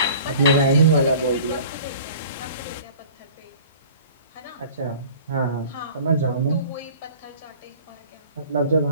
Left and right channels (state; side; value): inverted; both; correlation -0.45